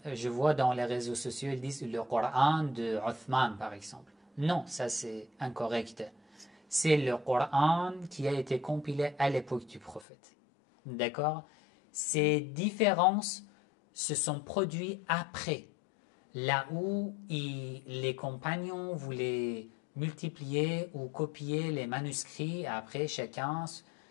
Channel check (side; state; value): right; drops out; at 10.1 s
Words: je vois dans les réseaux sociaux, ils disent le Coran de Uthman, par exemple. Non, ça c'est incorrect. C'est le Coran qui a été compilé à l'époque du prophète. D'accord? Ces différences se sont produites après, là où les compagnons voulaient multiplier ou copier les manuscrits, après chacun